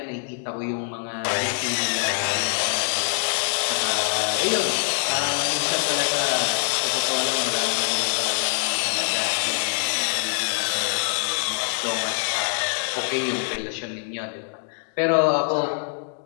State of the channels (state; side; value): silent; right; digital silence